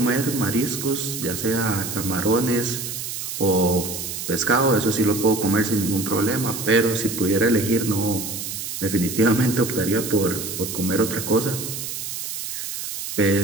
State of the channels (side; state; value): right; noise; hiss, 6 dB below the sound